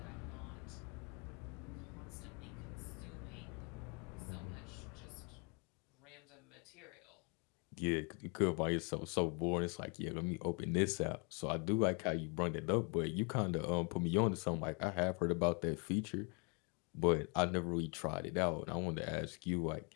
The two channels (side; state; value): right; quieter; 34.1 dB